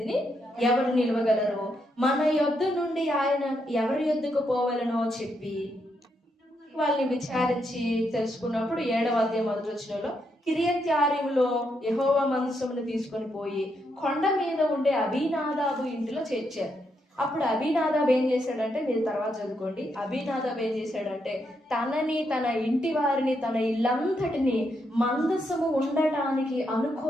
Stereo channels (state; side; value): normal; both; correlation 0.80